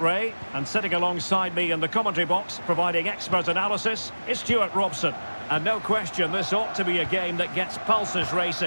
Ray, and sitting alongside me in the commentary box, providing expert analysis, is Stuart Robson. And no question, this ought to be a game that gets pulses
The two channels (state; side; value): inverted; both; correlation -1.00